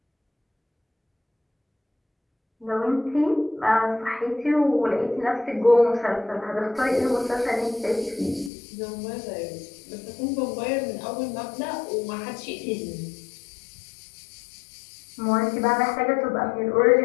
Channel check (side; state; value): right; drops out; at 8.5 s